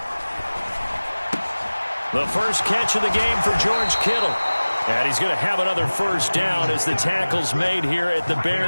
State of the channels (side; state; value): both; inverted; correlation -1.00